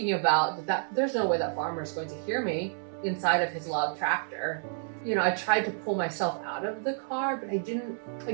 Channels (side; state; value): left; silent; 58 dB below the other